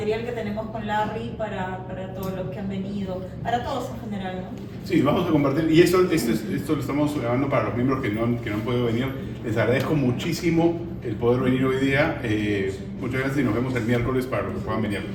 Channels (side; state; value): both; identical; correlation 1.00